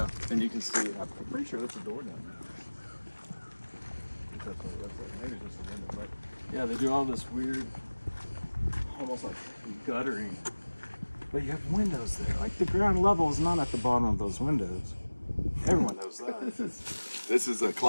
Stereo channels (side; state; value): both; inverted; correlation -1.00